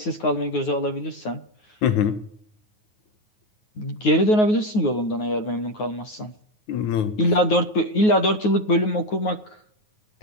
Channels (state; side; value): late; right; 9.4 ms